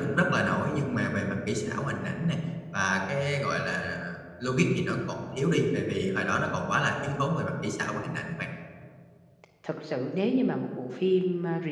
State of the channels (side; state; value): both; identical; correlation 1.00